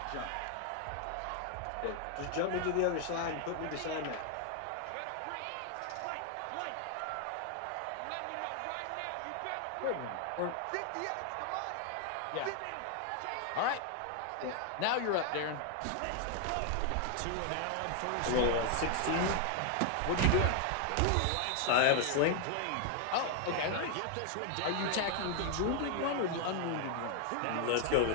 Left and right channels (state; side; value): different; both; correlation 0.00